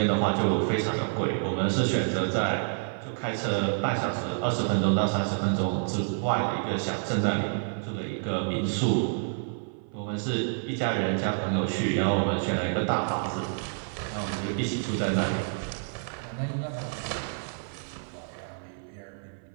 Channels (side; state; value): left; silent; 56 dB below the other